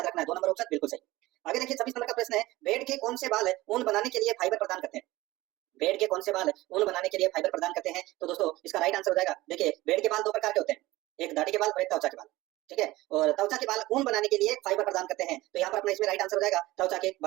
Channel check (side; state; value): left; quieter; 18.5 dB